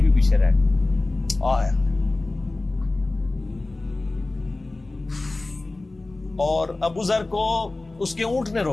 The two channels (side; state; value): right; quieter; 3.0 dB